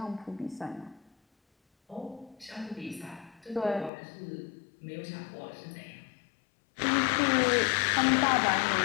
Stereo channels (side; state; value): right; drops out; at 3.9 s